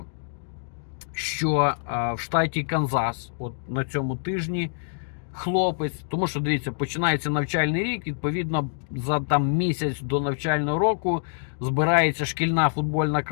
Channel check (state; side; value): silent; right; digital silence